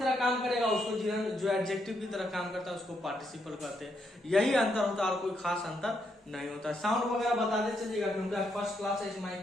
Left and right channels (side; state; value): both; normal; correlation 0.78